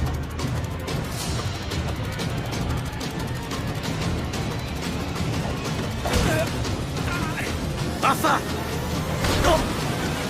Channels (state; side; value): identical; both; correlation 1.00